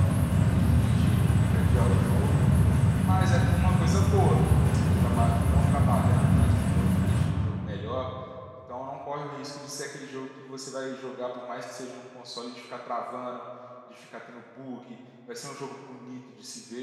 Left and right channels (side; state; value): both; identical; correlation 1.00